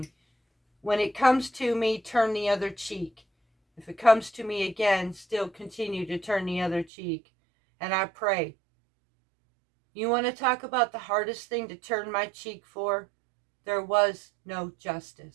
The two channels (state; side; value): drops out; left; at 6.9 s